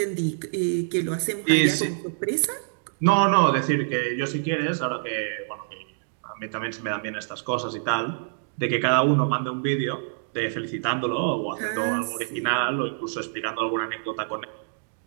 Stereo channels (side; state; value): left; silent; digital silence